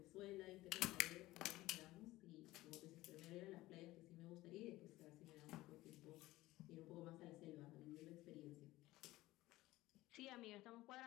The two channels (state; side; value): quieter; right; 17.8 dB